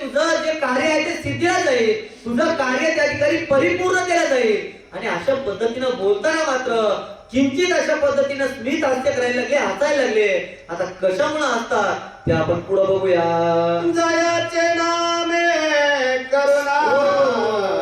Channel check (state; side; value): identical; both; correlation 1.00